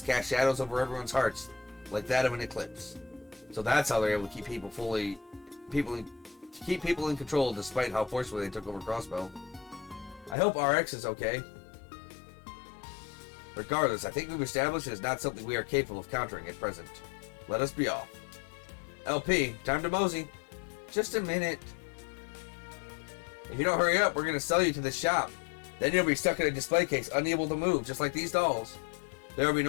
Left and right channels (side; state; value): right; drops out; at 10.4 s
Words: casts shadows over everyone's hearts, like that of an eclipse. So that's how they're able to keep people in control despite how forcefully they took over Crossbell. I hope RX is okay. Regardless, I think we've established it is not something we are capable of countering at present. Let us be off. LP, time to mosey. Just a minute. If you don't hurry up, we're going to sell you to the shop. Then you'll be stuck in a display case, unable to move, just like these dolls. There will be